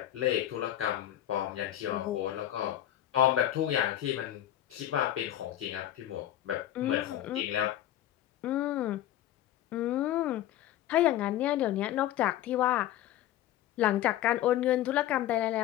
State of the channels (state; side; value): quieter; right; 12.9 dB